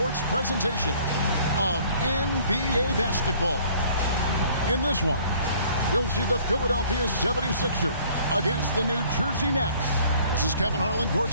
presentation of NBA basketball. In this one, you'll see the Philadelphia 76ers against the New Jersey Nets. This is Kevin Harlan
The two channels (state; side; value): inverted; both; correlation -0.56